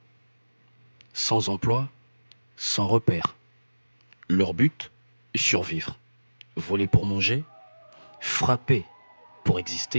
sans emploi, sans repère. Leur but, survivre. Voler pour manger, frapper pour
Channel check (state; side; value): inverted; both; correlation -1.00